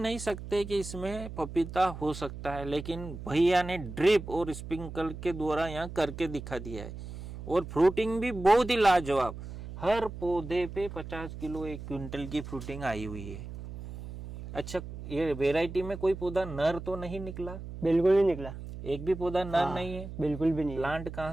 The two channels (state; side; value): noise; right; hum, 11 dB below the sound